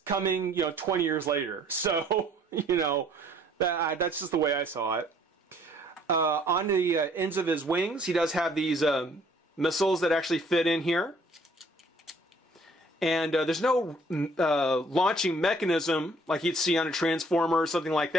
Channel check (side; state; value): both; normal; correlation 0.59